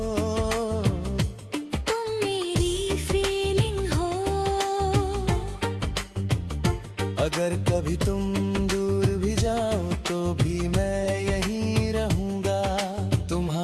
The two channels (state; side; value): identical; both; correlation 1.00